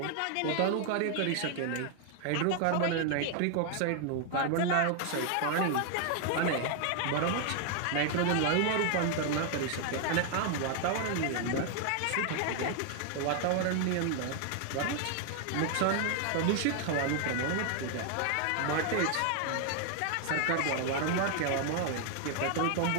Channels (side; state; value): both; different; correlation 0.00